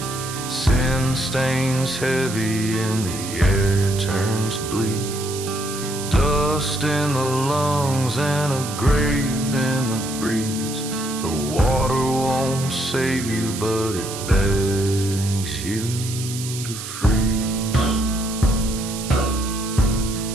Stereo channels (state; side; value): noise; right; hiss, 9 dB below the sound